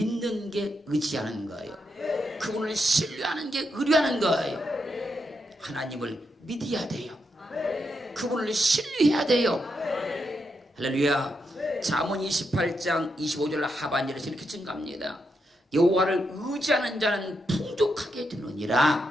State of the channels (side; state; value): both; normal; correlation 0.82